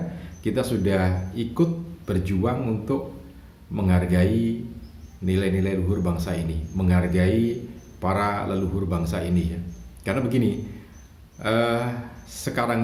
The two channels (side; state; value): both; identical; correlation 1.00